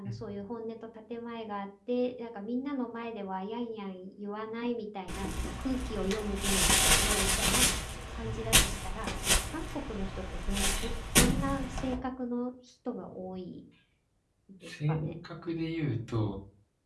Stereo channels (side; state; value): both; identical; correlation 1.00